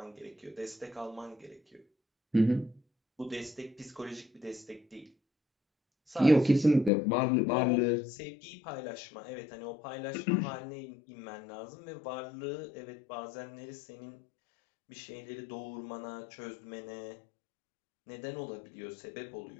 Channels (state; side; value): drops out; right; at 6.9 s